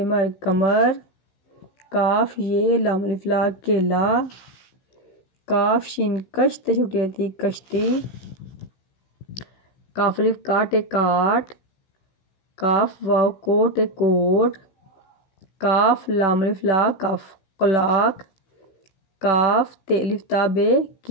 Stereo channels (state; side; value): late; right; 16 ms